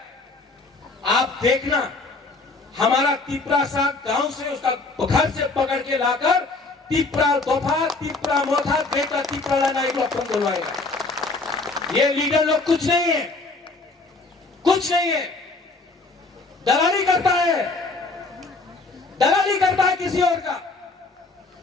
आप देखना, हमारा तिपरासा गांव से उसका घर से पकड़ के लाकर तिपरा दोफा, तिपरा मोथा, बेटा तिपरा नाई को अपन बोलवाएगा। ये लीडर लोग कुछ नहीं है, कुछ नहीं है, दलाली करता है किसी और का।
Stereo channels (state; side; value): quieter; right; 3.5 dB